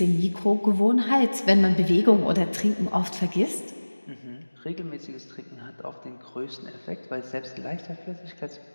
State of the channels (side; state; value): both; inverted; correlation -1.00